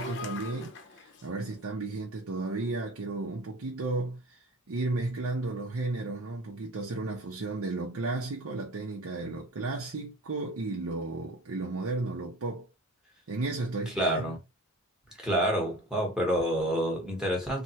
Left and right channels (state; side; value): normal; both; correlation 0.41